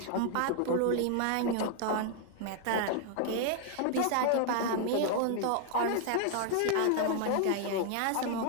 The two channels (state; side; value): different; both; correlation 0.00